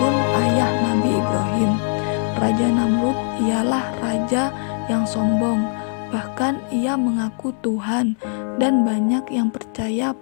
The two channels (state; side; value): silent; right; 57 dB below the other